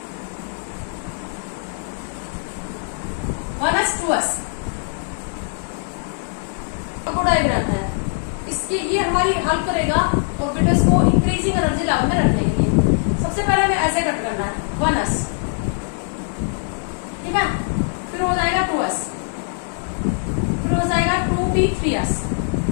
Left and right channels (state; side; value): silent; right; 64 dB below the other